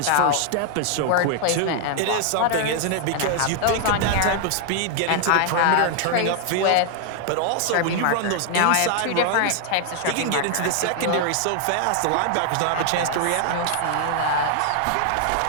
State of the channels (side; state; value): both; different; correlation 0.00